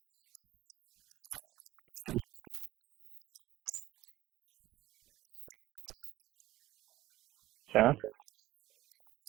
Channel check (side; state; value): left; quieter; 16.0 dB